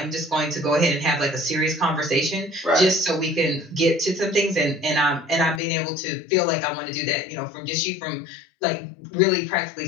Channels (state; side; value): drops out; right; at 5.6 s